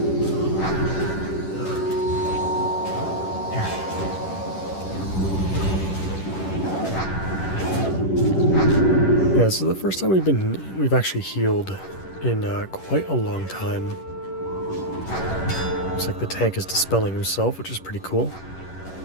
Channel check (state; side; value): late; right; 10 ms